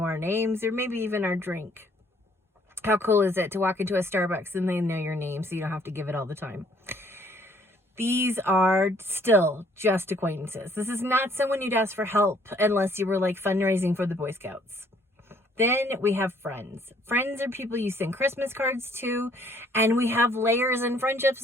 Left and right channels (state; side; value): normal; both; correlation 0.63